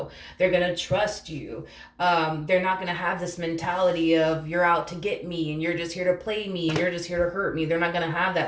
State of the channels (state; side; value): identical; both; correlation 1.00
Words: They're going to trust you. They're not going to have this mentality of you're out to get me and you're just here to play me and you're just here to hurt me. They're not going to have